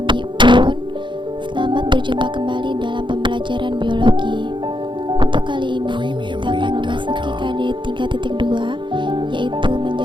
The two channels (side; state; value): left; late; 0.23 ms